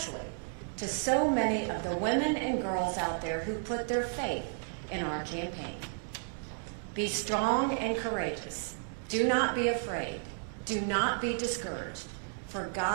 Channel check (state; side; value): silent; left; 56 dB below the other